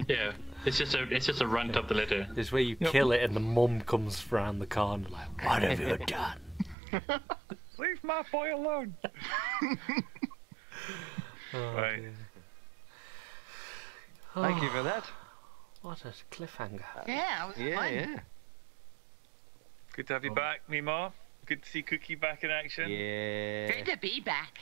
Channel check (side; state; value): left; drops out; at 6.8 s